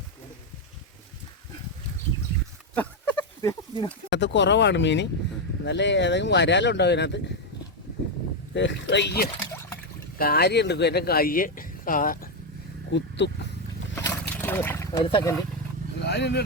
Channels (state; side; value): normal; both; correlation 0.05